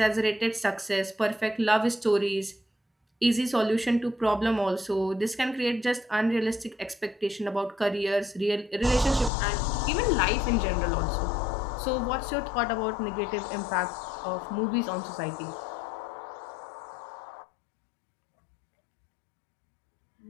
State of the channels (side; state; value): right; drops out; at 9.3 s